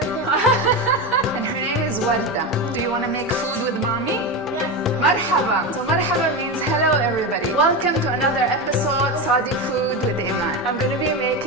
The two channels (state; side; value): normal; both; correlation 0.18